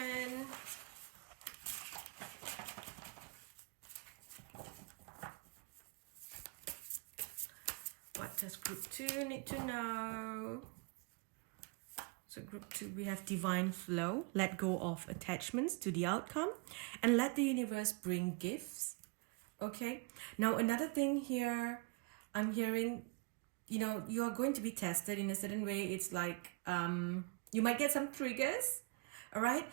What does group 2 need to know? So group 2, we have divine flow. Let go of attachments to the outcome and let the universe bring gifts. Okay. Now, another thing here, I'm hearing, you know, you are going to be tested in a certain way. It's like you might get some triggers. All right.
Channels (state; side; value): quieter; left; 28.4 dB